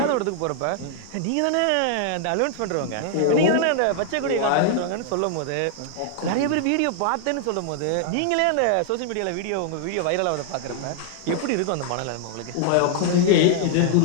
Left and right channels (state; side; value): different; both; correlation -0.01